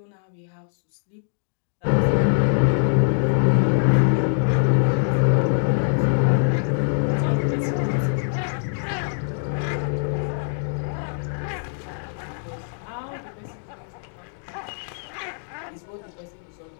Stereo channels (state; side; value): silent; right; digital silence